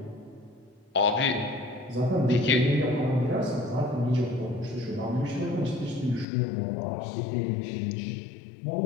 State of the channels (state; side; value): drops out; right; at 6.2 s